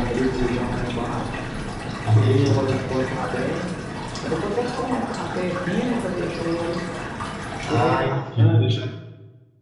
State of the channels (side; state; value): both; identical; correlation 1.00